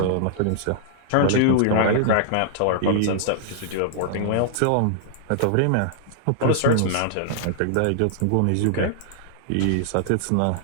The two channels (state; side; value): different; both; correlation -0.01